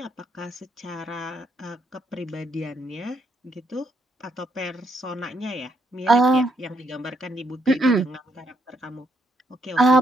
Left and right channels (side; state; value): both; normal; correlation 0.75